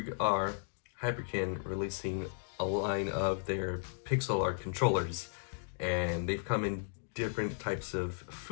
are, Hyperkin releasing a line of their pixel art controllers, and they've come in different types of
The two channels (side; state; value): right; silent; digital silence